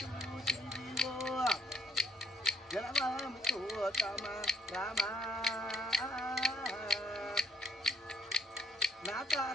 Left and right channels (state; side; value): normal; both; correlation 0.66